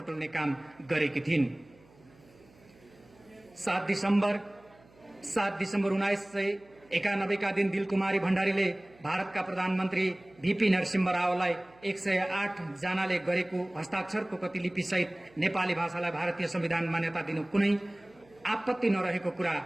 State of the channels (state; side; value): noise; right; hum, 28 dB below the sound